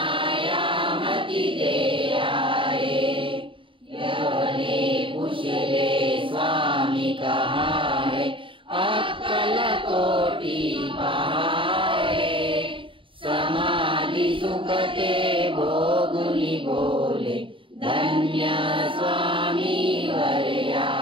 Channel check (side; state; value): left; late; 0.25 ms